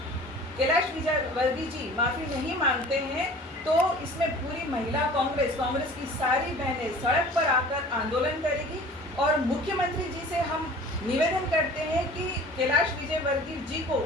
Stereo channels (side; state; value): both; normal; correlation 0.44